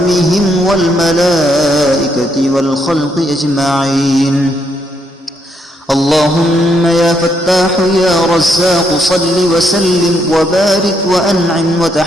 والملائكة والخلق أجمعين. اللهم يا فتاح يا رزاق صل وسلم وبارك وأنعم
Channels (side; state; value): both; normal; correlation 0.76